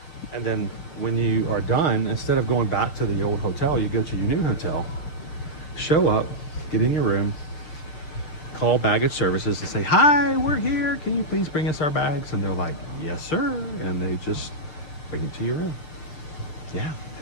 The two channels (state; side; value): late; right; 6.5 ms